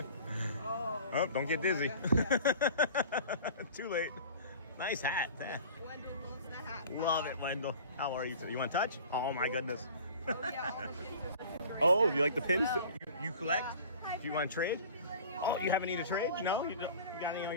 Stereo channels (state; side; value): inverted; both; correlation -0.43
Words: Oh, don't get dizzy. Too late. Nice hat. Wendell loves the hat. Love it, Wendell. How are you today? You want to touch? Oh my goodness. Oh, yeah, all the pins are great. Oh, you like the pins? You collect? Do you want to trade? Oh, you haven't need a trade? No? You got any in